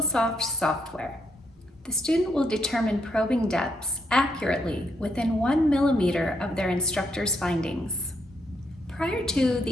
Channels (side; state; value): both; normal; correlation 0.76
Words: software. The student will determine probing depths accurately within 1 millimeter of their instructor's findings. Prior to